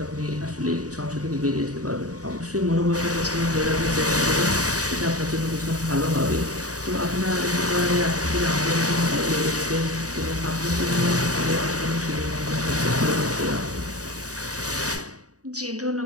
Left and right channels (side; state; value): left; late; 0.67 ms